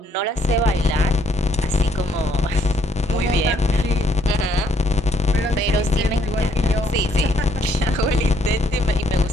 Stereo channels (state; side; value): normal; both; correlation 0.70